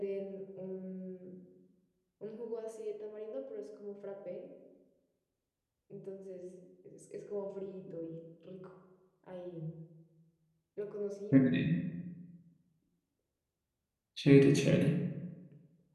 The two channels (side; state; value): both; identical; correlation 1.00